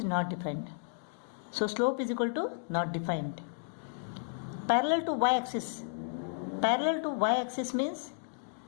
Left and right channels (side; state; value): right; silent; digital silence